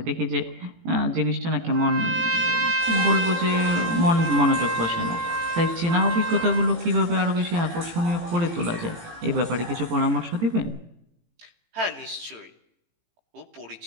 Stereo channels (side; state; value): left; late; 18 ms